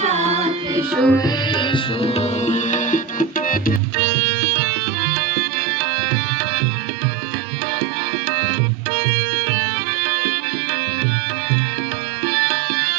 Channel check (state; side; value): drops out; left; at 3.8 s